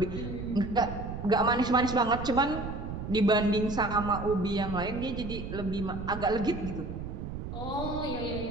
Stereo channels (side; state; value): right; noise; rumble, 7 dB below the sound